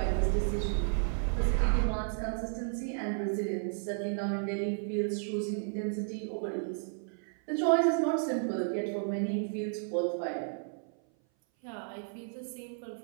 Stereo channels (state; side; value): silent; left; 56 dB below the other